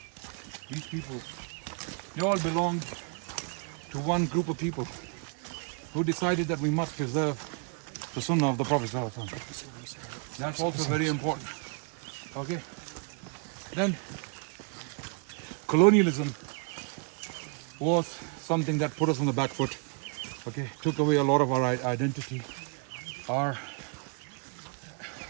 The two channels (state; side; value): quieter; left; 37.3 dB